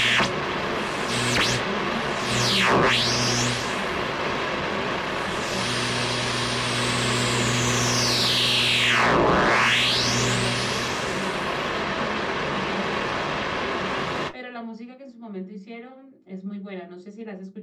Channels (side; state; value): both; identical; correlation 1.00